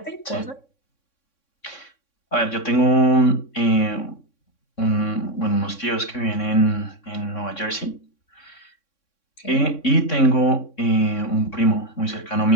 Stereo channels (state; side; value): late; right; 3.6 ms